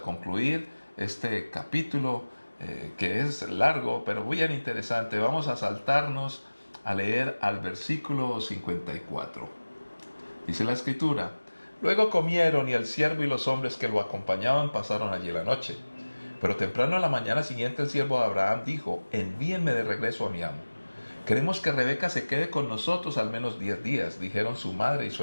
concluir este capítulo que es largo, pero bien interesante. Vamos a saltarnos a leer al versículo 54. Dice la escritura: luego comieron y el siervo y los hombres que lo acompañaban pasaron allí la noche. Pero temprano a la mañana siguiente el siervo de Abraham dijo: envíenme de regreso a mi amo. Queremos que Rebeca se quede con nosotros al menos 10 días, dijeron su madre y su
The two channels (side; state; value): both; inverted; correlation -1.00